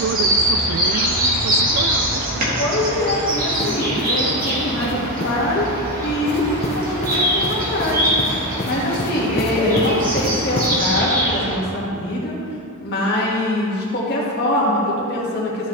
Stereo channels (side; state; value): both; normal; correlation 0.14